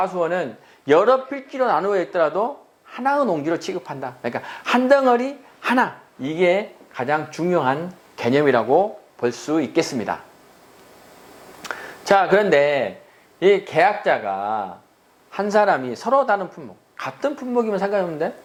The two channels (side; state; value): both; identical; correlation 1.00